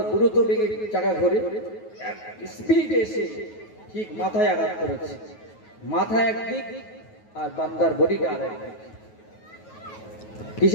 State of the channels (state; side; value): late; right; 9.3 ms